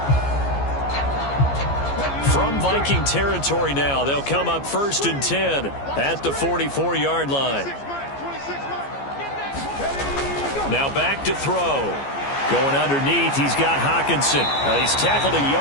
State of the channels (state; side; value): late; right; 14 ms